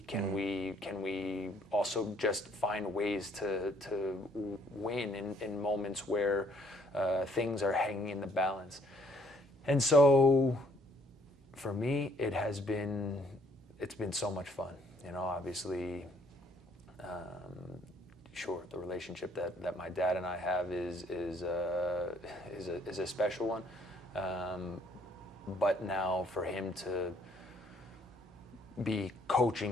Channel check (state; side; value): normal; both; correlation 0.64